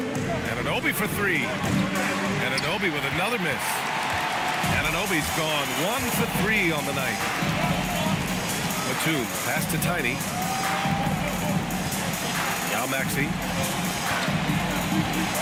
Anunoby for three. Anunoby with another miss. Anunoby's gone 1 for 3 on the night. Batum, pass to Tiny. Now Maxey.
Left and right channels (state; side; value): identical; both; correlation 1.00